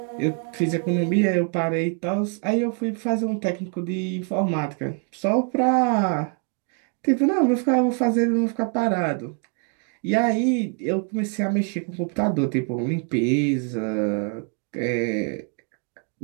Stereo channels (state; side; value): quieter; left; 40.0 dB